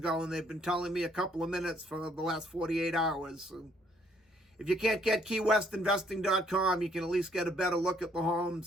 and they've been telling me a couple of minutes for the last 48 hours. So if you can't get keywestinvesting.com, you can at least get a better look at the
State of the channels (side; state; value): both; normal; correlation 0.67